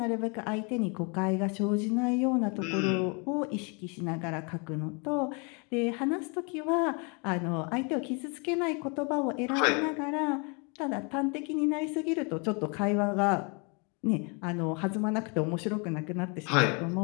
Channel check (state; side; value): quieter; right; 33.5 dB